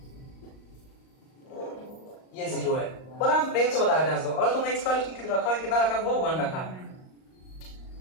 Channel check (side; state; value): right; late; 38 ms